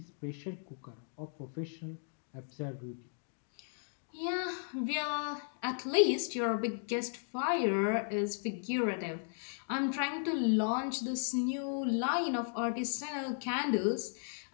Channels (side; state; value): right; silent; digital silence